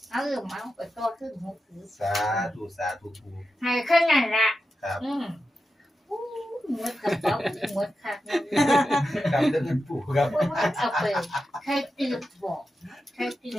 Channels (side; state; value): both; normal; correlation 0.90